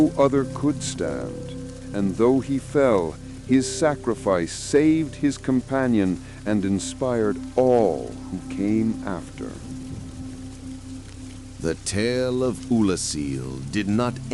other could stand, and though he fell, his sacrifice saved his companion and inspired all who came after. The tale of Ulasil did not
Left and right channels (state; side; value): identical; both; correlation 1.00